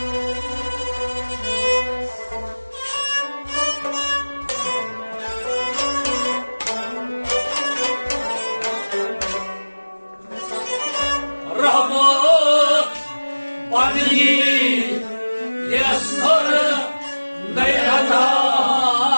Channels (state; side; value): inverted; both; correlation -1.00